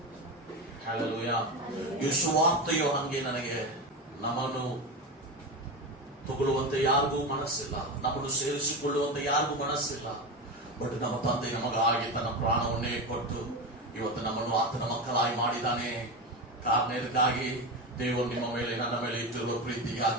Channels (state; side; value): normal; both; correlation 0.19